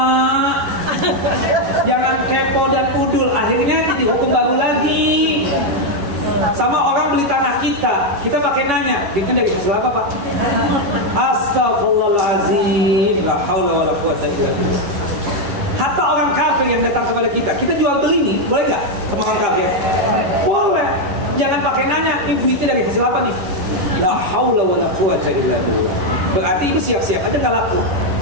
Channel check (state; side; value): late; left; 11 ms